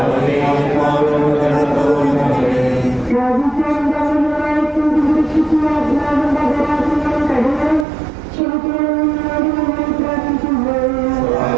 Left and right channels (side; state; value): left; drops out; at 7.9 s